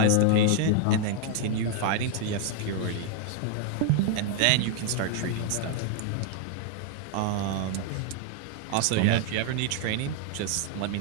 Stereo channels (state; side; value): different; both; correlation 0.00